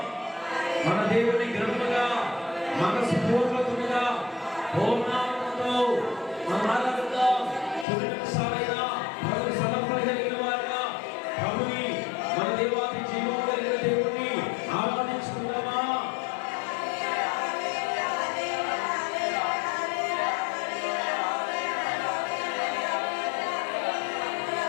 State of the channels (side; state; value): right; drops out; at 7.9 s